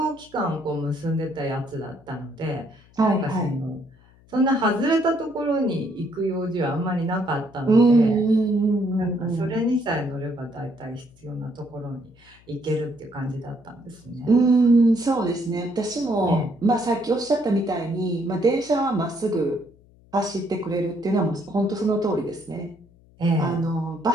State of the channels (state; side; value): noise; left; hum, 28 dB below the sound